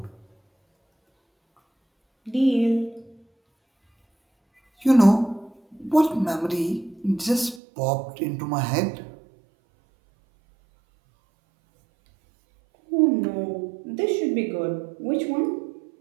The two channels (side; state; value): left; drops out; at 7.6 s